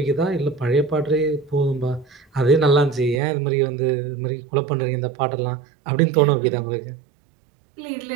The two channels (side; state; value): left; drops out; at 3.2 s